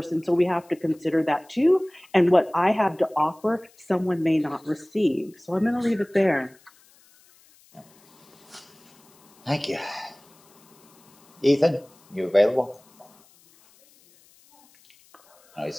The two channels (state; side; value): noise; left; hiss, 30 dB below the sound